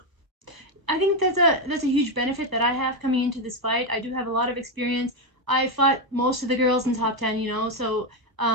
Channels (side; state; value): left; late; 1.1 ms